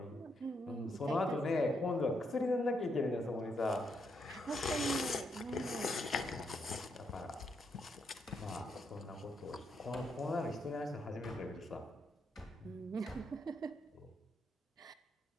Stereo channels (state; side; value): normal; both; correlation 0.78